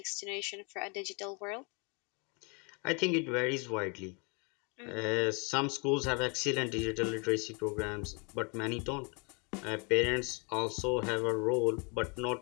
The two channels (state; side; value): quieter; right; 32.8 dB